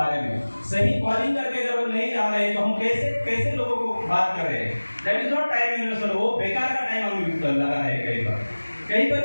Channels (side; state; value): both; inverted; correlation -1.00